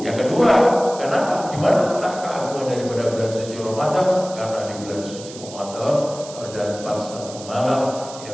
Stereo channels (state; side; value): noise; right; hiss, 15 dB below the sound